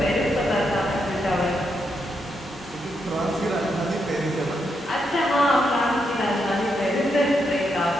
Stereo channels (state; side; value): normal; both; correlation 0.81